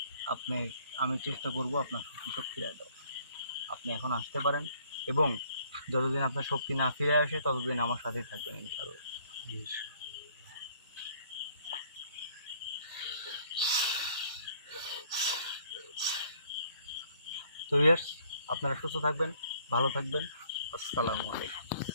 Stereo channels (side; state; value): both; inverted; correlation -0.61